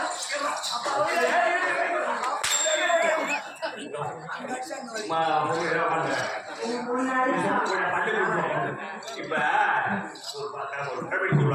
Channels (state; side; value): identical; both; correlation 1.00